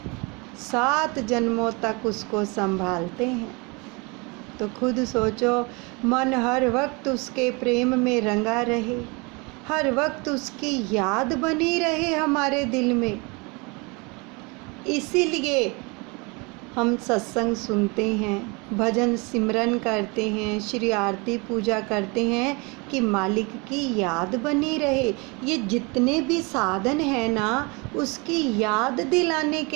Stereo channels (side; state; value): left; quieter; 28.5 dB